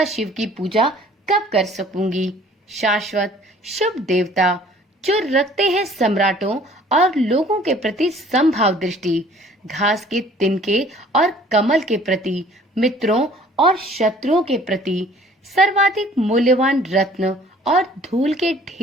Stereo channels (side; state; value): both; normal; correlation 0.54